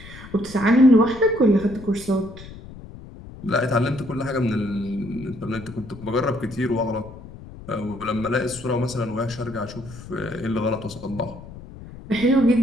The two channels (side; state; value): left; noise; rumble, 16 dB below the sound